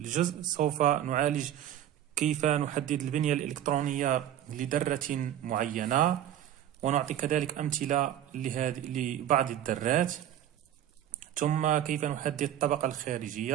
سوف نعالج كيف نحدد البنية الإلكترونية لذرة معينة، ونعطي كذلك أمثلة لبعض الذرات، ثم كيف نحدد الطبقة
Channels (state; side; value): quieter; left; 11.2 dB